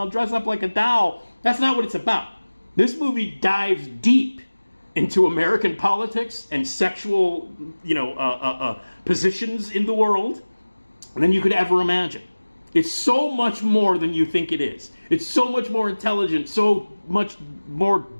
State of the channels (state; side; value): inverted; both; correlation -1.00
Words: dress up like a doll. That's not what it's about. This movie dives deep into American politics and sexual, positions in the world than you could ever imagine. It's so much more than you think it is. It's so much more intelligent, so much more